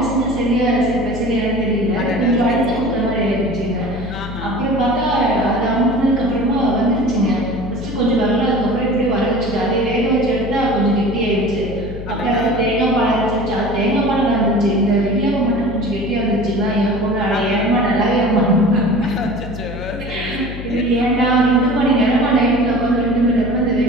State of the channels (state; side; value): noise; left; hum, 10 dB below the sound